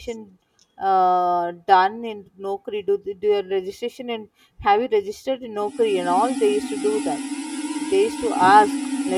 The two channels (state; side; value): identical; both; correlation 1.00